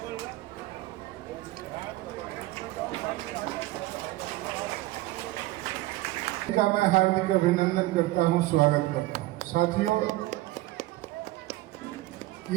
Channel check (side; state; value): left; quieter; 18.1 dB